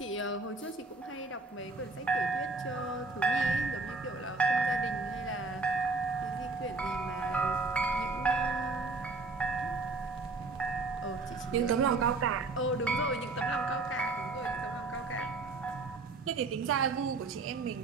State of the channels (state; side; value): quieter; left; 3.6 dB